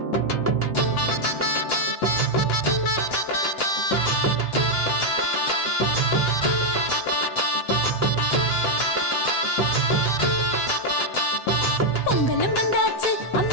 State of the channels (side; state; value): right; late; 7.9 ms